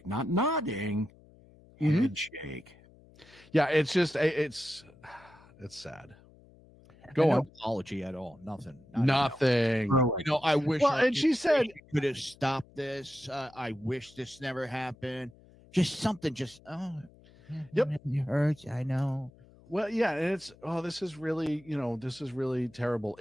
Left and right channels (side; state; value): left; noise; hum, 25 dB below the sound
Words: Not nodding. Head shake. Yeah, it's just it's sad. Go on. No apology at all. Nothing. Nothing. I wish. Well, and she said could have stopped this. I wish this never happened. Just something. Just yep. It hurts. I know. Well, yeah, and it's this is really terrible.